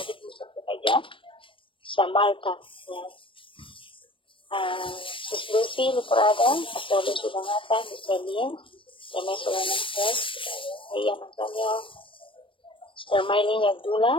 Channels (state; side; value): late; right; 0.25 ms